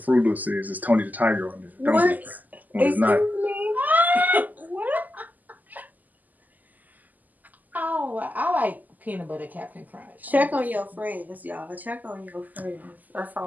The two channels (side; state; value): left; late; 0.082 ms